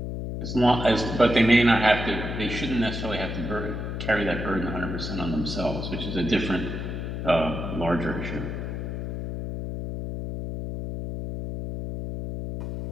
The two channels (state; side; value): noise; left; hum, 5 dB below the sound